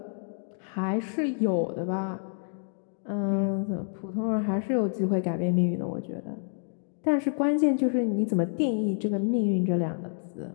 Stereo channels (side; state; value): right; silent; digital silence